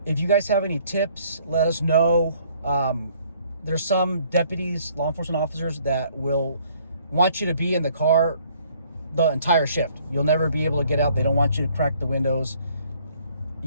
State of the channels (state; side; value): inverted; both; correlation -0.61